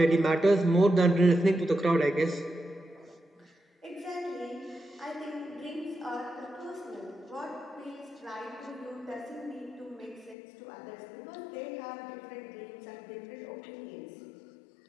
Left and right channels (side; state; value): right; drops out; at 10.4 s